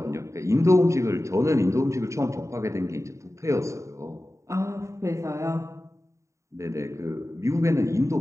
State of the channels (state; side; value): late; left; 0.14 ms